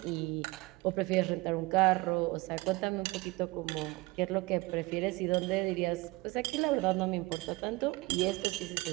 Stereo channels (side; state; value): left; quieter; 22.6 dB